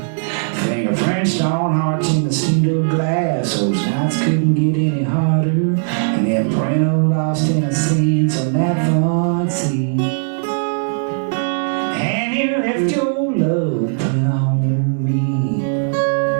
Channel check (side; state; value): left; silent; digital silence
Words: fingerprints on hearts in the steel glass. Those nights couldn't get any harder, and then print of lost innocence on that front seat. And you left your love print on me.